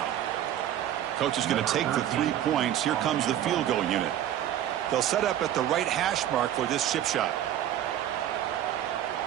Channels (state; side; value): quieter; left; 11.4 dB